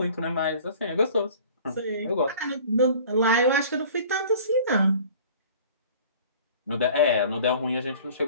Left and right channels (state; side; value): inverted; both; correlation -0.47